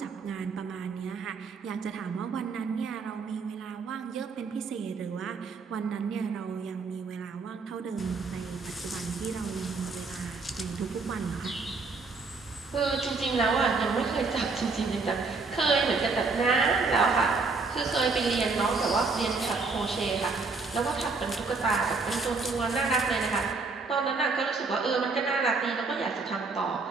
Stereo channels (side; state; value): left; quieter; 4.2 dB